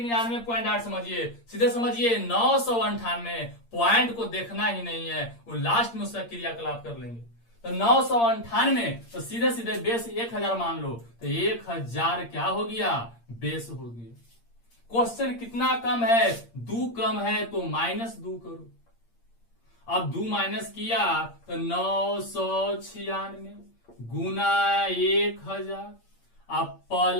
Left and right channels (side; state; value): right; late; 8.6 ms